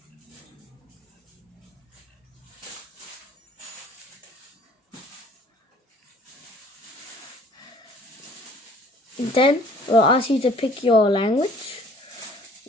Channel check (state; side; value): normal; both; correlation 0.54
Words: Then we'll ask you to pick your language.